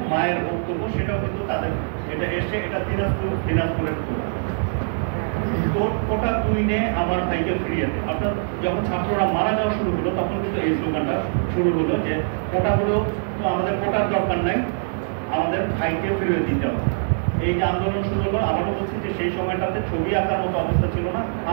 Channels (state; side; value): silent; left; digital silence